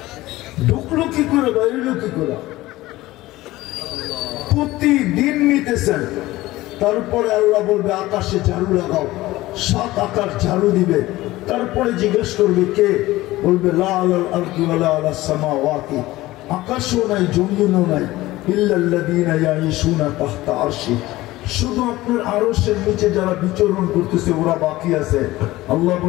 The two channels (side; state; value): right; quieter; 17.7 dB